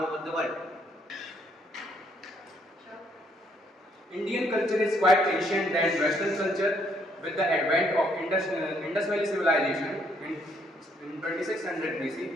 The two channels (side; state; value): both; normal; correlation 0.69